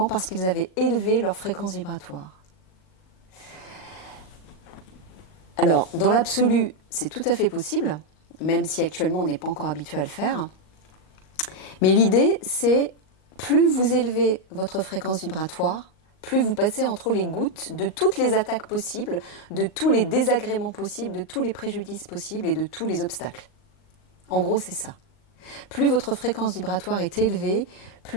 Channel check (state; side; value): late; right; 38 ms